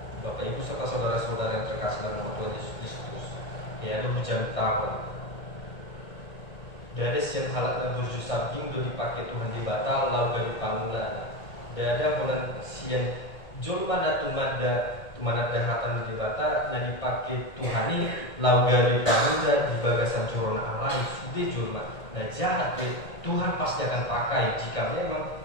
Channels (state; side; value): late; right; 1.8 ms